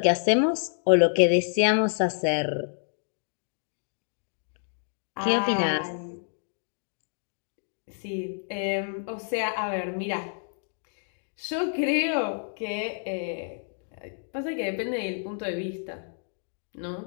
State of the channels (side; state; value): right; silent; digital silence